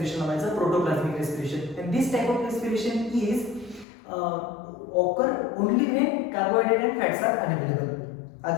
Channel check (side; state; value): right; drops out; at 3.9 s